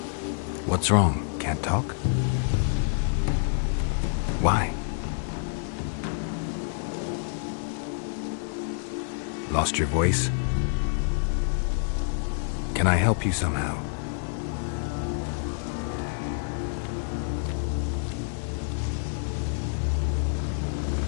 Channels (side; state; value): right; silent; digital silence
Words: What's wrong? Can't talk? Why? Lost your voice? Can I help you somehow?